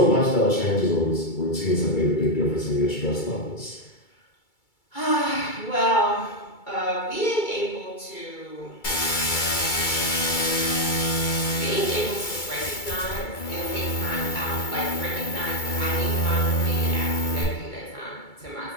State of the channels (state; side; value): late; right; 2.3 ms